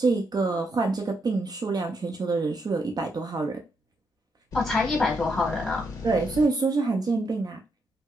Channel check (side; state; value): both; normal; correlation 0.79